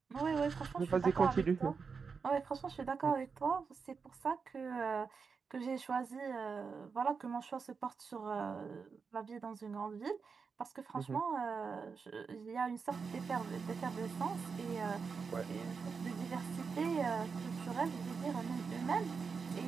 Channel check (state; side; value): quieter; left; 5.4 dB